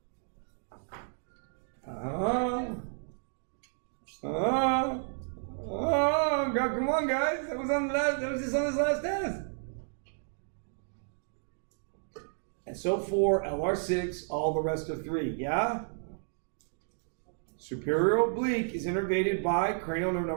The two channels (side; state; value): left; silent; digital silence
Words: Come on, guys. That was just on this last test. And so 4, LR6, all the rest of 3. Yeah? Superior oblique is innervated by cranial nerve